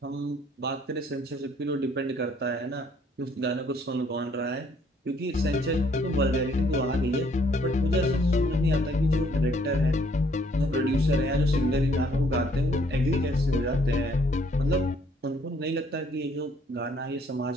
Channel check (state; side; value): normal; both; correlation 0.64